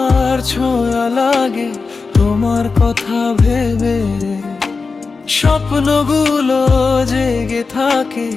ছোঁয়া লাগে তোমার কথা ভেবে, স্বপ্নগুলো জেগে থাকে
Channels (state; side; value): quieter; right; 4.4 dB